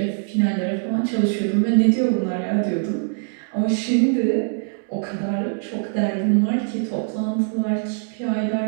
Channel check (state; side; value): silent; left; 56 dB below the other